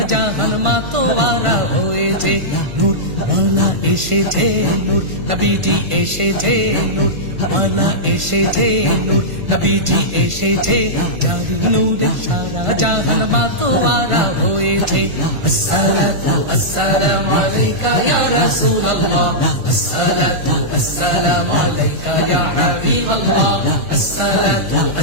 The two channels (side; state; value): left; late; 1.5 ms